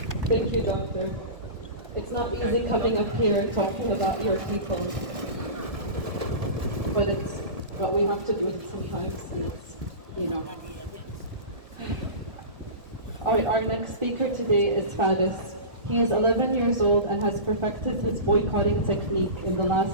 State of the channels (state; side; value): late; left; 1.3 ms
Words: Thank you, Doctor. It's not easy coming up here talking about your people, but we have to do it sometimes, and it's, you know. Our next speaker today is Faris. He is 11 years old and has perfected his boycotting technique in the